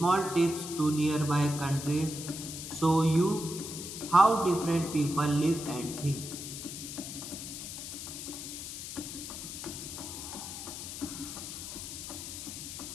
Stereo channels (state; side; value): noise; left; hiss, 8 dB below the sound